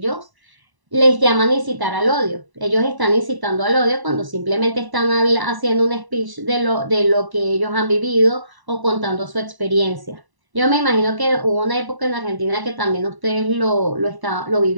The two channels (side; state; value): left; late; 1.0 ms